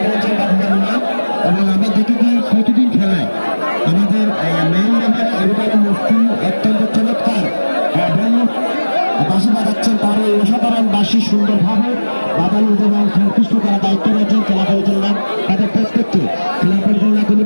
প্রতিদিন খেলায় আমাদের অত্যন্ত চমৎকার বাঁশি বাজাচ্ছেন। তার এই অসাধারণ বাঁশি সুন্দরভাবে বাজানো এবং সন্তুষ্ট করা দায়িত্ব রয়েছেন খেলা পরিচালনা তাদের প্রত্যেককে খেলা পরিচালনা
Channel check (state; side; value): inverted; both; correlation -1.00